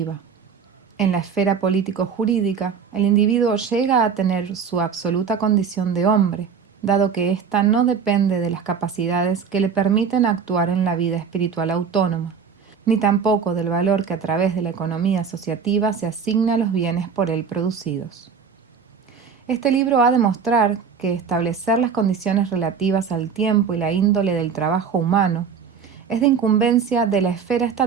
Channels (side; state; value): left; quieter; 6.4 dB